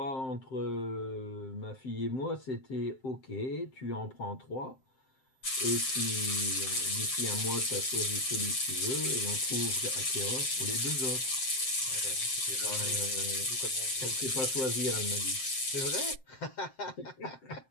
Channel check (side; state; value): right; late; 7.6 ms